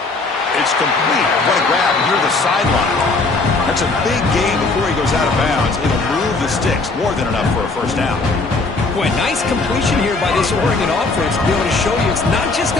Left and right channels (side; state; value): right; quieter; 3.6 dB